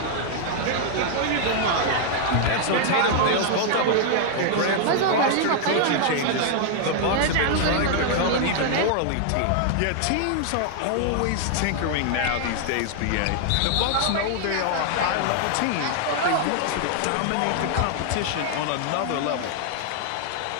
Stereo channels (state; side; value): different; both; correlation 0.00